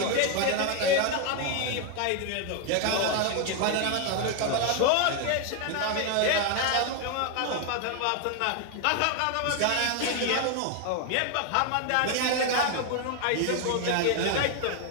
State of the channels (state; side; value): different; both; correlation 0.01